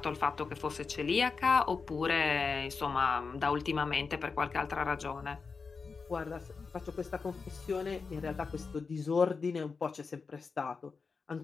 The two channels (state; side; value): quieter; right; 4.9 dB